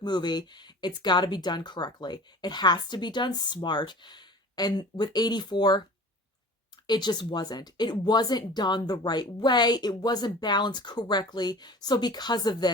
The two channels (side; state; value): both; normal; correlation 0.41